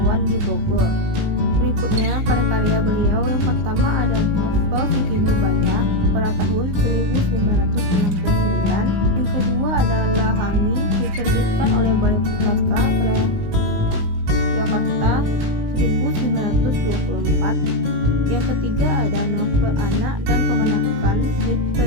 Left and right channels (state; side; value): late; left; 19 ms